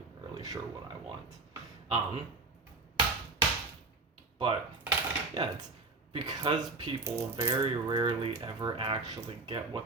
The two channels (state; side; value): quieter; left; 3.4 dB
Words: really sure what I want. But yeah, it's because people very rarely ever actually get